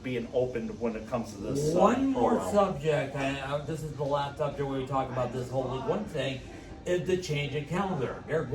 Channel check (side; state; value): both; identical; correlation 1.00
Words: opened when it comes to this. One more subject, and this is the last subject where we talk about this whole League One thing, is the change in calendar. They're